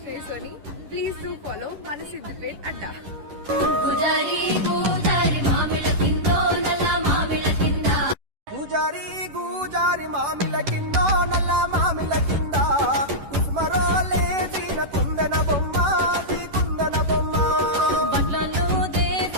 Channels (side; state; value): left; late; 11 ms